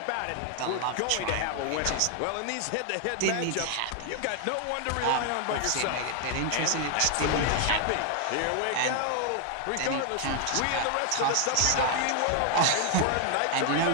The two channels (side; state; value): both; different; correlation 0.00